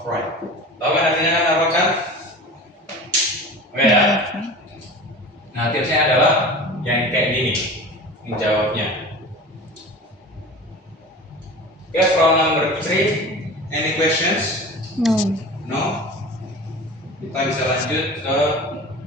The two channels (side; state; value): both; normal; correlation 0.36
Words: right. Tahu kan artinya kan apa kan? Oke ya. Nah, tipsnya adalah yang kayak gini menjawabnya. Okay, from number 3, any questions? No. No? Kita bisa lanjut ke